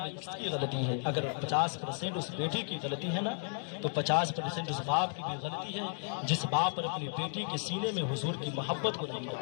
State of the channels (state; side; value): silent; right; 55 dB below the other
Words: کس کی غلطی ہے؟ اگر 50% اس بیٹی کی غلطی ہے نا تو 50% اس باپ کی بھی غلطی ہے، جس باپ نے اپنی بیٹی کے سینے میں حضور کی محبت کو نہیں